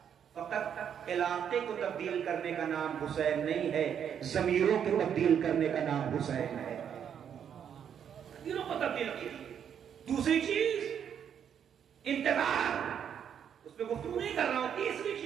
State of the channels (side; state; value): left; quieter; 8.5 dB